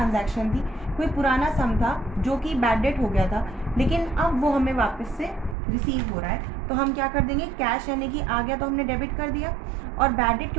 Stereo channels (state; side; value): drops out; left; at 5.6 s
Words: थी, कोई पुराना सम था जो कि बैड डेट हो गया था, लेकिन अब वो हमें वापस से रिसीव हो रहा है। तो हम क्या कर देंगे, कैश यानी कि आ गया तो हमने डेबिट कर दिया, और बैड डेट